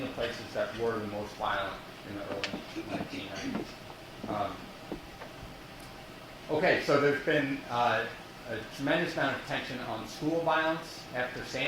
the places that were the most violent in the early 1990s. Okay, so there's been a tremendous amount of attention on school violence after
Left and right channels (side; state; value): both; identical; correlation 1.00